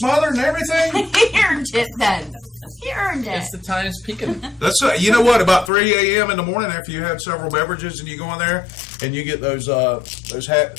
and everything. it. He earned it then. He earned it. It's the Times Pekin. That's you know what? About 3 a.m. in the morning, after you had several beverages, and you go in there and you get those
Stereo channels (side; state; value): right; drops out; at 5.7 s